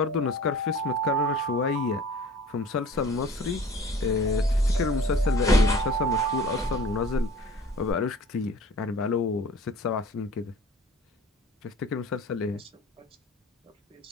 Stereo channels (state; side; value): normal; both; correlation 0.45